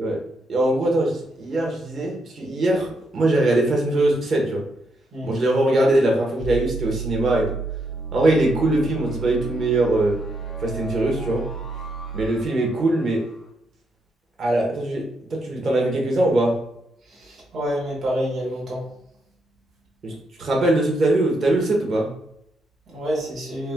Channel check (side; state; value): both; normal; correlation 0.78